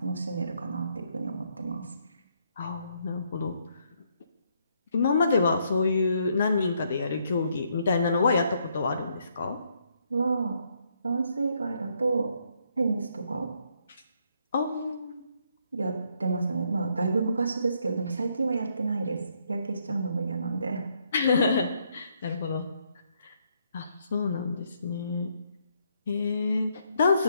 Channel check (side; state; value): both; inverted; correlation -0.73